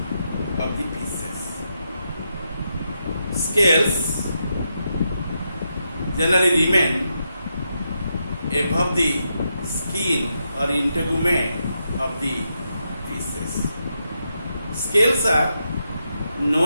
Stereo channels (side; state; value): both; inverted; correlation -0.84